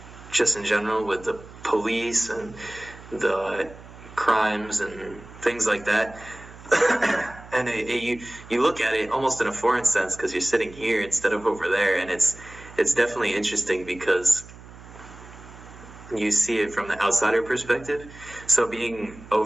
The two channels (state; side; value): noise; right; hum, 18 dB below the sound